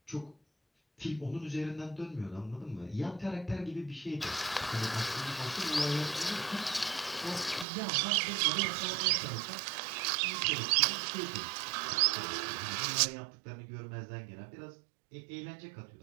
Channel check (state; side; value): drops out; left; at 7.7 s